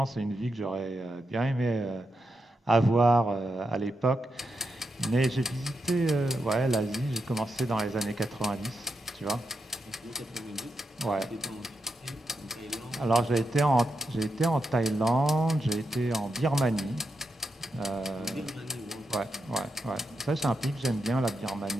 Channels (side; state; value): both; normal; correlation 0.85